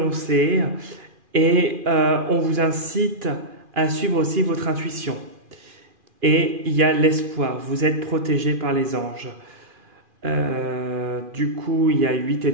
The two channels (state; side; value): late; left; 2.4 ms